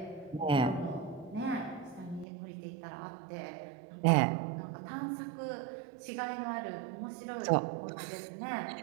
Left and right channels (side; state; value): left; drops out; at 2.2 s